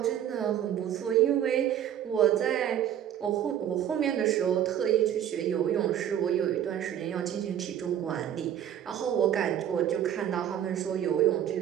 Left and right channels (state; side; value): quieter; left; 10.2 dB